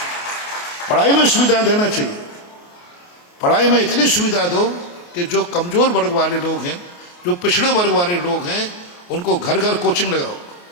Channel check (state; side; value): late; right; 28 ms